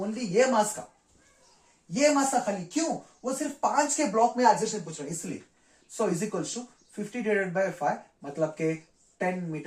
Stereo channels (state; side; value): identical; both; correlation 1.00